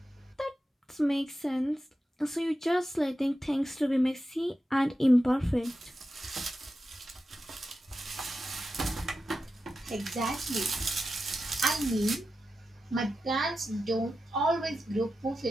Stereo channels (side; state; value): both; normal; correlation 0.91